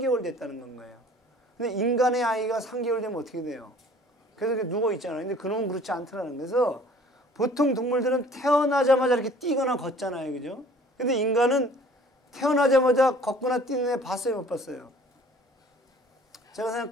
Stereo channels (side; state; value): both; normal; correlation 0.51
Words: 됐다는 건 거예요. 근데 인간의 아이가 3개월 되면 어떻게 돼요? 그래서 이렇게 누워 있잖아요. 근데 그놈은 그렇지 않더라는 거예요. 그래서 보통 동물들은 태어나자마자 이렇게 뛰거나 걷잖아요. 그죠? 근데 인간은 태어나자마자 걷거나 뛰는 애 봤어요? 못 봤어요? 제가